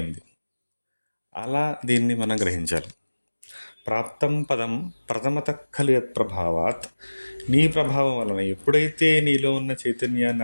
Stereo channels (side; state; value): both; inverted; correlation -1.00